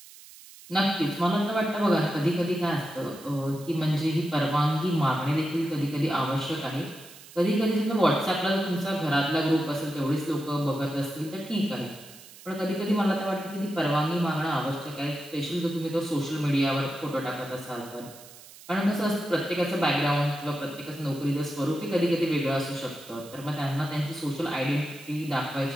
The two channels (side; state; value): right; noise; hiss, 19 dB below the sound